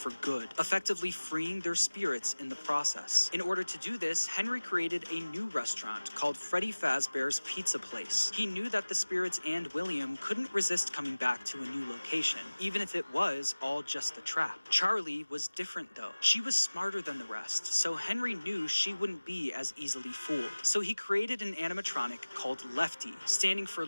good, effectively freeing their spirits in the process. In order to do this, Henry created a new restaurant called Freddy Fazbear's Pizza Place. He knew that the spirits and William couldn't resist coming back to a new location, even if it was all just a trap. Charlie was different though. She was smarter than the rest, so Henry knew she wouldn't be as easily fooled. So he created an animatronic called Lefty, standing for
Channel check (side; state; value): both; inverted; correlation -1.00